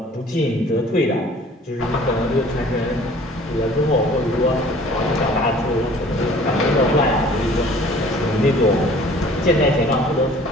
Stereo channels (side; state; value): both; normal; correlation 0.51